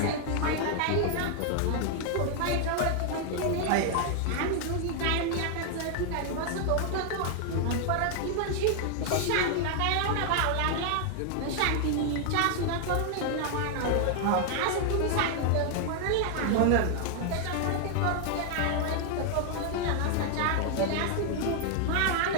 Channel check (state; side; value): different; both; correlation 0.00